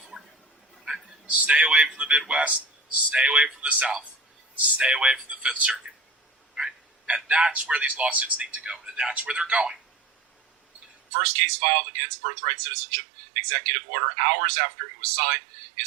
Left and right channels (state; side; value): drops out; left; at 10.9 s